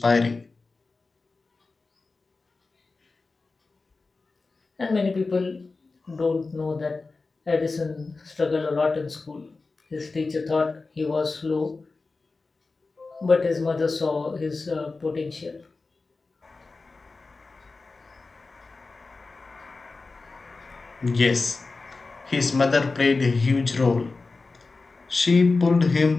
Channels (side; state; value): right; quieter; 3.8 dB